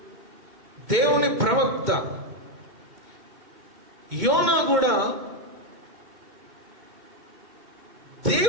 దేవుని ప్రవక్త. యోనా కూడా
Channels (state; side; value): late; left; 2.1 ms